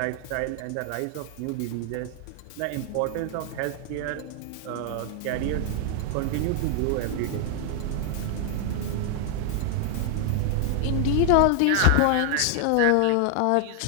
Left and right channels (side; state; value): both; different; correlation 0.00